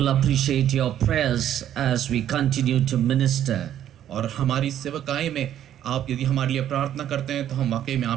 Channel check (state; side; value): quieter; left; 11.0 dB